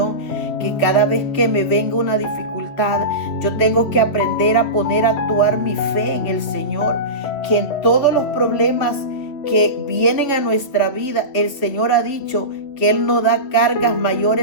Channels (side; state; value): right; late; 3.0 ms